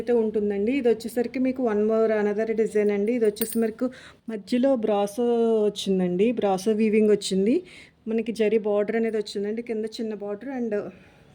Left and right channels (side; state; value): both; identical; correlation 1.00